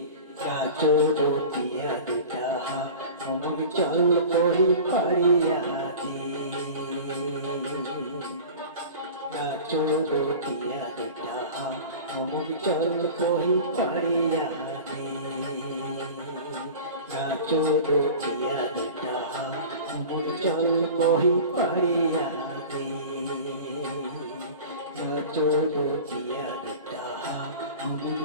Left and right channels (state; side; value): inverted; both; correlation -0.36